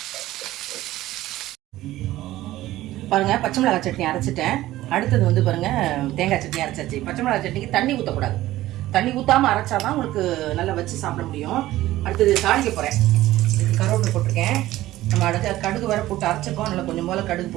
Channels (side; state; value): left; quieter; 15.7 dB